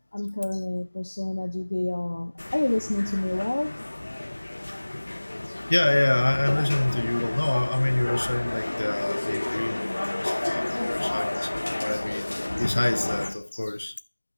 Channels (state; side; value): inverted; both; correlation -1.00